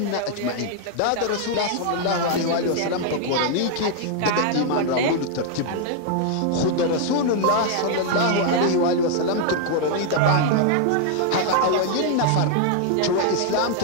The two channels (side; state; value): both; different; correlation 0.00